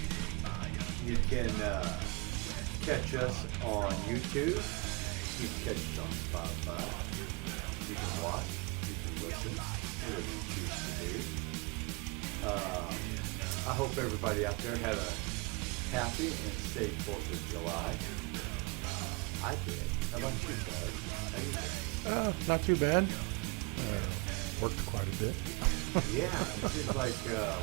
You can catch us on YouTube. You can catch us on Spotify. You can watch. You can listen. Whatever you choose to do. I hope everybody out there had a happy and safe 4th of July. I did. How about you, Doug? How you doing? Not too bad. Worked quite a bit. Yeah, it seems like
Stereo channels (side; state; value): left; quieter; 29.1 dB